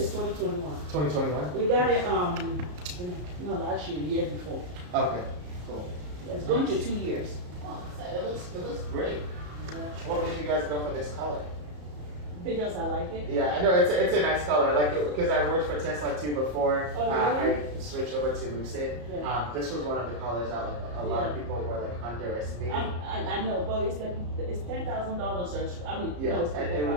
2021. 2021. We got it no last year, the year before. Okay, cool. It's going to 2 years. Oh, it looks great. What made you guys go for this color? Because I like it. Yeah, I know it's a nice color. I like it because I worked for Tesla too before. Oh, really? I switched over to Lucid. Yeah. This was one of the colors that like a lot of people were like underestimating. I know, but it's like it's $10,000 or so. I mean, Yeah, no, it's and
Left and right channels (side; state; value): left; late; 34 ms